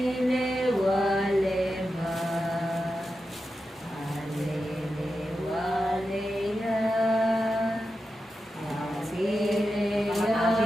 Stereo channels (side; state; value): both; normal; correlation 0.90